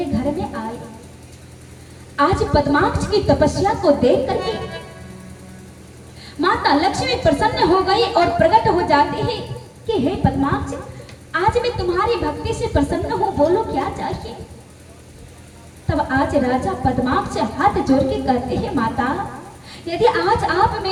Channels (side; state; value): both; identical; correlation 1.00